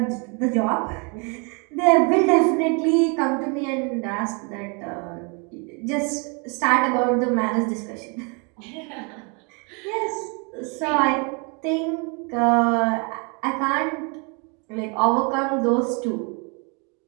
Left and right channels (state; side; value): quieter; left; 33.9 dB